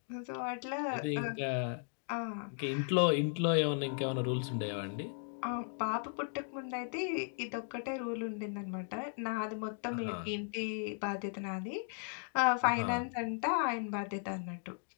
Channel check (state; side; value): silent; right; 53 dB below the other